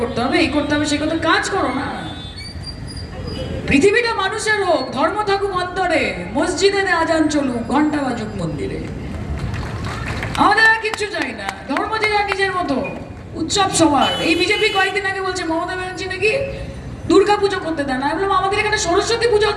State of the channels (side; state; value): both; identical; correlation 1.00